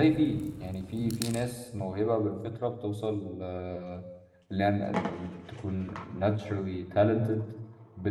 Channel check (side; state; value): both; identical; correlation 1.00